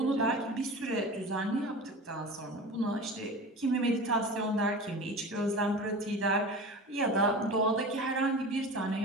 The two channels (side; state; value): both; normal; correlation 0.33